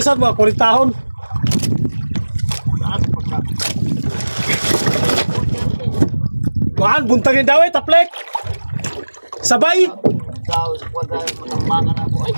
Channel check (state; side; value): inverted; both; correlation -1.00